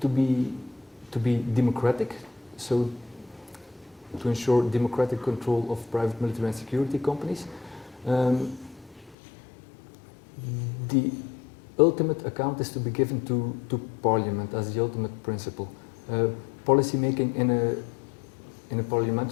be democratic, so to ensure democratic control of private military and security companies, the ultimate account is to be given to Parliament as the ultimate principle. Policymaking in a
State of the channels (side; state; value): right; drops out; at 9.2 s